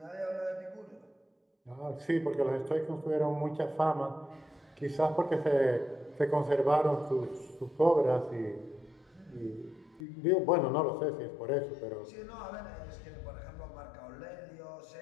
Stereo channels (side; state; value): right; drops out; at 10.0 s